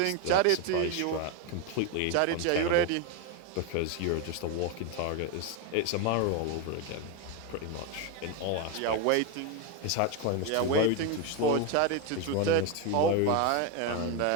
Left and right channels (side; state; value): both; different; correlation 0.02